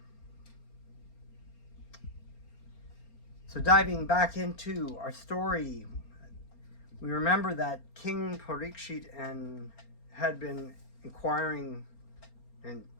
So diving back into our story, we remember that King Parikshit had been inquiring and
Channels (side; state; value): right; late; 4.3 ms